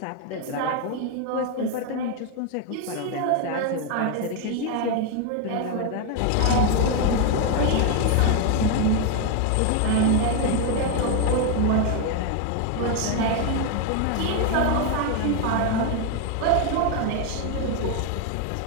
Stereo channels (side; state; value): both; different; correlation 0.01